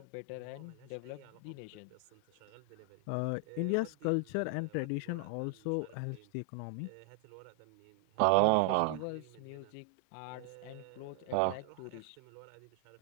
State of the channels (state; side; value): different; both; correlation 0.00